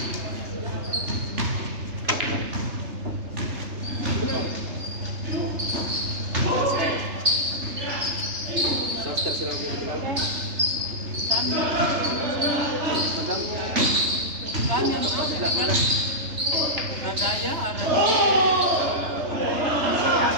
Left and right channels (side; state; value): left; late; 3.3 ms